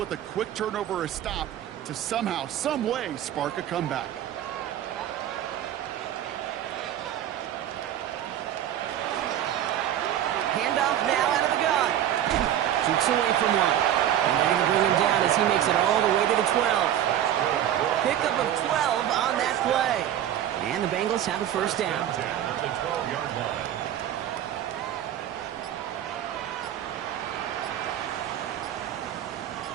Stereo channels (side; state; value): left; quieter; 11.2 dB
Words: a quick turnover or a stop to somehow, some way, spark a comeback? Handoff now out of the gun. Shoots away from one. And they're going to bring him down as he makes it all the way to the 12. Pickup of 12 on that play. And the Bengals have a 1st down. At the 12-yard line.